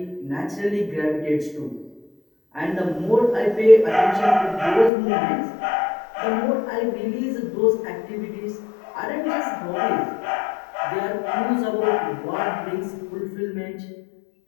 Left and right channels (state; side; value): drops out; right; at 4.9 s